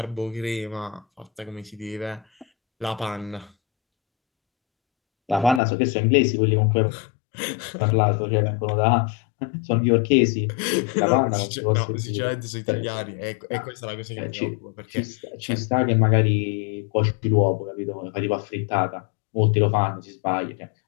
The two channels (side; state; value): right; drops out; at 5.6 s